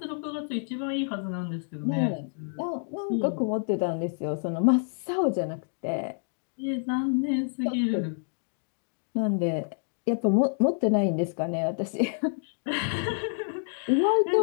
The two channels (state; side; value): silent; right; digital silence